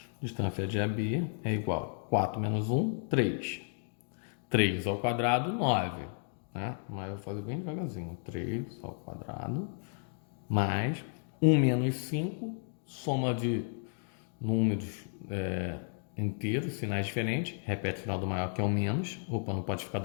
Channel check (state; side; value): silent; right; 56 dB below the other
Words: Distância de AB é igual a 4 menos 1, 3. 3 ao quadrado, 9. Né? Mas eu vou fazer bem devagarzinho. 3 ao quadrado mais 1 menos 5, soma de números inteiros, sinais diferentes. Repete o sinal do maior, que é o menos. Opa, não pode ficar